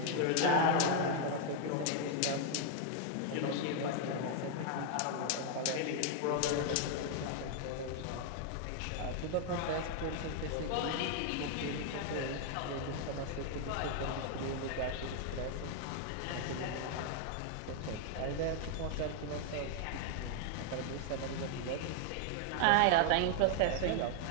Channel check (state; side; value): different; both; correlation 0.00